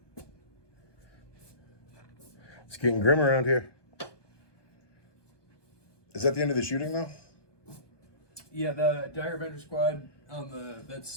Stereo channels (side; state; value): right; late; 1.2 ms